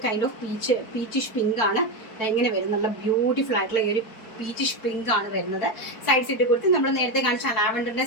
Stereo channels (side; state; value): right; late; 4.6 ms